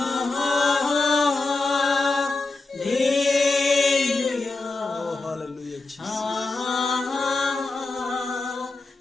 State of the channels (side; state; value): right; quieter; 3.5 dB